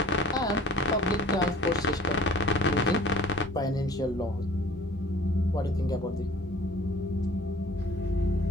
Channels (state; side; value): normal; both; correlation 0.49